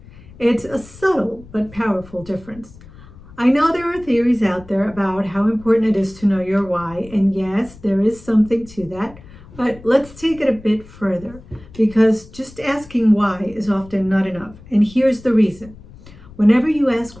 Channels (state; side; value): noise; left; rumble, 20 dB below the sound